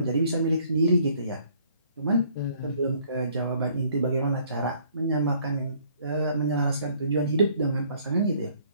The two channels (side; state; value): both; inverted; correlation -0.61